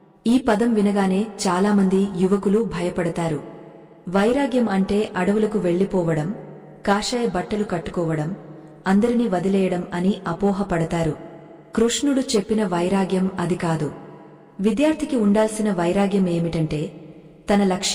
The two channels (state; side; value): identical; both; correlation 1.00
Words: ఈ పదం వినగానే చాలామంది యువకులు భయపడతారు. వైరాగ్యం అంటే అడవులకు వెళ్లిపోవడం, కాషాయ బట్టలు కట్టుకోవడం, అందరినీ వదిలేయడం అని అపోహపడతారు. కృష్ణుడు చెప్పిన వైరాగ్యం అది కాదు. విద్యార్థికి ఉండాల్సిన వైరాగ్యం ఏమిటంటే తన